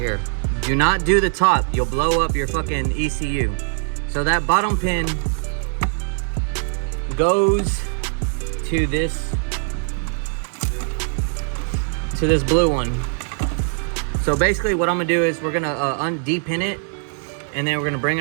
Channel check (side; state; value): left; silent; digital silence